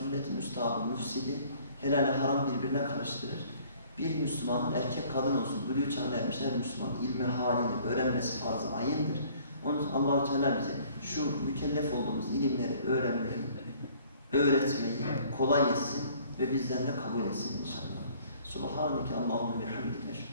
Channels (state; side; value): inverted; both; correlation -0.56